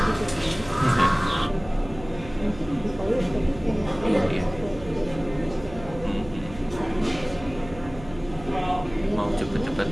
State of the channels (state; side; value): noise; right; hum, 15 dB below the sound